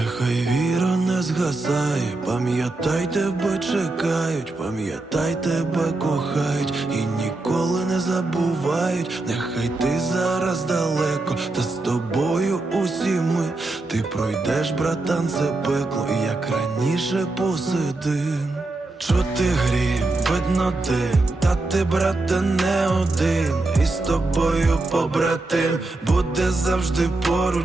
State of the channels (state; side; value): quieter; left; 3.0 dB